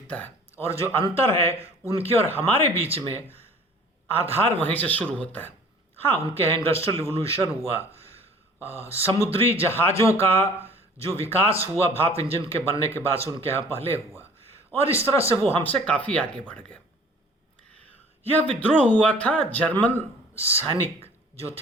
है। और जो अंतर है उनके और हमारे बीच में, आधार वहीं से शुरू होता है। हाँ, उनके यहाँ इंडस्ट्रियल रिवोल्यूशन हुआ, समुद्री जहाज़ों का जो विकास हुआ भाप इंजन के बनने के बाद से उनके यहाँ पहले हुआ, और इस तरह से वो हमसे काफ़ी आगे बढ़ गए। यह विद्रोह हुआ था जर्मन सैनिक जो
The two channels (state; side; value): normal; both; correlation 0.49